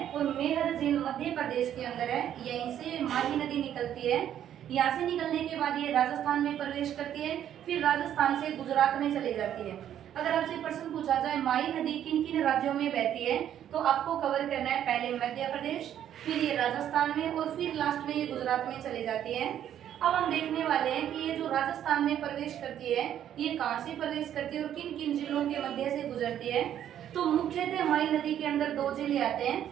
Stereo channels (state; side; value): quieter; left; 10.5 dB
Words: और मेहंद झील मध्य प्रदेश के अंदर है। यहीं से माही नदी निकलती है। यहाँ से निकलने के बाद ये राजस्थान में प्रवेश करती है, फिर राजस्थान से गुजरात में चली जाती है। अगर आपसे प्रश्न पूछा जाए माही नदी किन किन राज्यों में बहती है तो आपको कवर करना है पहले मध्य प्रदेश, फिर ये राजस्थान में और फिर लास्ट में ये गुजरात में चली जाती है। अब हम देखने वाले हैं कि ये जो राजस्थान में प्रवेश करती है ये कहाँ से प्रवेश करती है और किन किन जिलों के मध्य से गुजरती है। तो मुख्यतः माही नदी के अंदर दो जिले आते